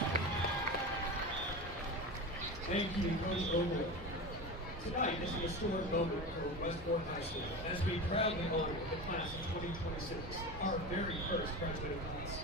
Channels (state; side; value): normal; both; correlation 0.26